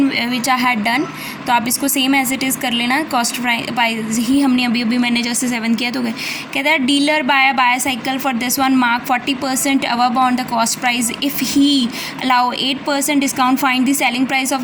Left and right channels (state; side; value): identical; both; correlation 1.00